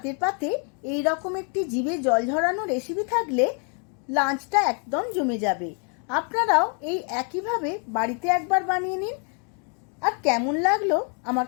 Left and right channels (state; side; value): quieter; right; 39.7 dB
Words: পাতে এই রকম একটি জিভে জল ঝরানো রেসিপি থাকলে লাঞ্চটা একদম জমে যাবে। আপনারাও এই একইভাবে বাড়িতে একবার বানিয়ে নিন। আর কেমন লাগলো আমার